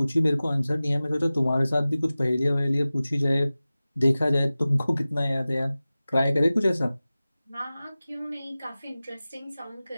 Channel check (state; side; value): inverted; both; correlation -0.97